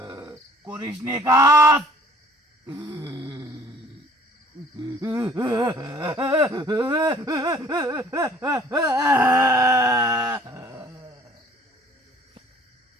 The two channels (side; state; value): both; normal; correlation 0.53